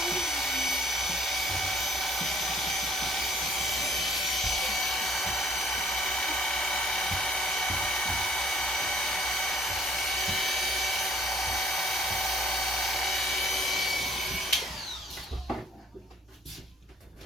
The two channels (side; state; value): both; normal; correlation 0.60